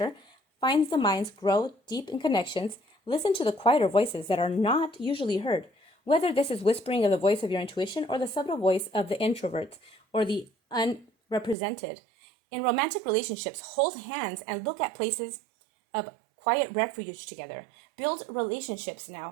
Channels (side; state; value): left; drops out; at 11.6 s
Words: finds the minds grow deep in connections. Listen to the quieter voices that are not usually heard, whether this is whispering of the voice of your intuition or the subtle voice of the introverts or the unrepresented. In romantic relationships, hold hands and look at places of quiet refuge together. Build relationships